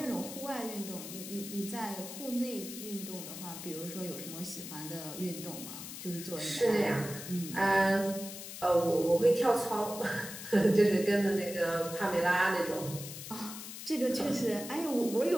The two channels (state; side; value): noise; left; hiss, 10 dB below the sound